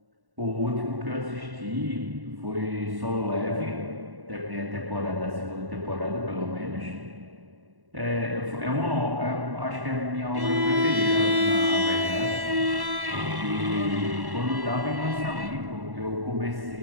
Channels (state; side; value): late; left; 1.1 ms